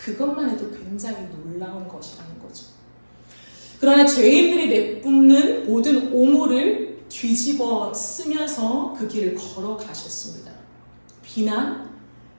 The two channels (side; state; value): both; inverted; correlation -1.00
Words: 해도 굉장히 놀라운 것이라는 거죠. 그러나 죄인들이 내뿜는 모든 오물을 뒤집어 쓰면서 그 길을 걸어가셨습니다. 비난,